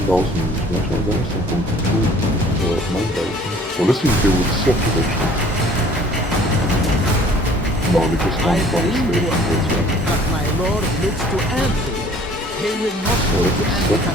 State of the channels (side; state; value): both; normal; correlation 0.53